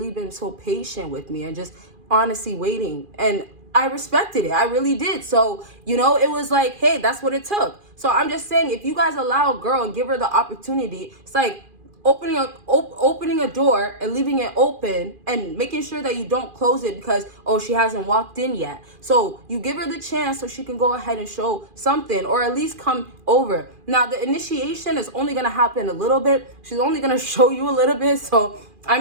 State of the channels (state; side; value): late; left; 2.4 ms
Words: been so patient with me and just honestly waiting. And I respected it. I really did. So, it was like, hey, that's what it took. So I'm just saying, if you guys allow a girl and give her the opportunity, it's like opening a door and leaving it open and making sure that you don't close it because, she hasn't walked in yet. So you give her the chance so she can go ahead and show something, or at least come over. Now, the initiation is only going to happen a little bit. She's only going to show you a little bit. So,